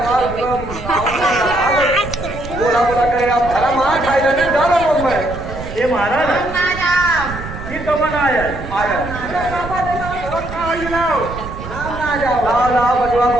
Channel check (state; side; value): noise; right; rumble, 10 dB below the sound